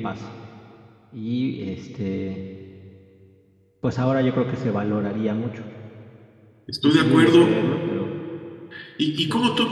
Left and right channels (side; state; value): both; identical; correlation 1.00